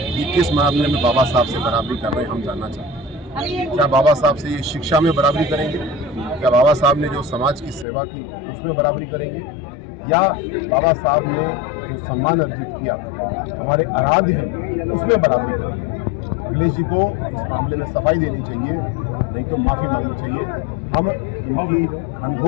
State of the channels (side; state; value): right; drops out; at 7.9 s